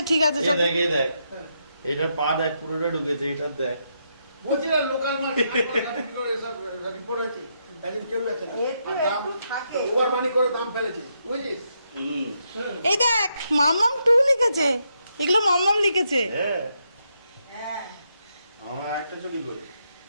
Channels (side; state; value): both; inverted; correlation -0.80